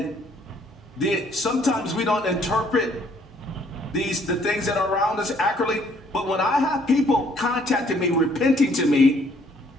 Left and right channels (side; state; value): both; normal; correlation 0.64